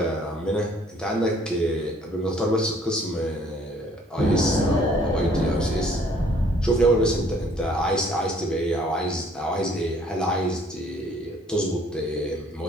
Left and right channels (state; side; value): normal; both; correlation 0.59